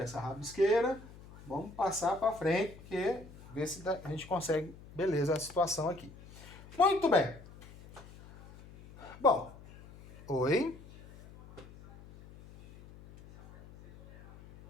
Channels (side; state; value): left; noise; hum, 19 dB below the sound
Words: essa rabisqueira. Vamos passar para frente, porque ver se a gente consegue, beleza, a situação aqui. Muito bem. Bom, oi.